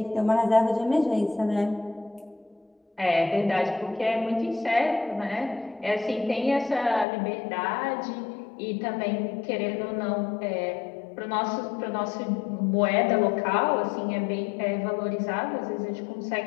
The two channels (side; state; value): right; drops out; at 7.1 s